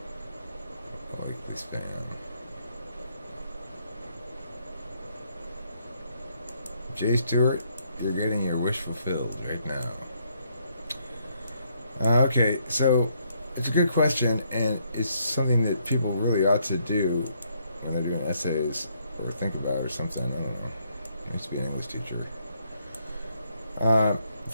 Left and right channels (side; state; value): both; inverted; correlation -0.73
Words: Likely spam. Jay Stewart, you're getting your wish fulfilled right now. Okay, so it's a good question, and it's something that people really ought to do when they're doing essays or think about or something. I don't know. I used to be an English teacher.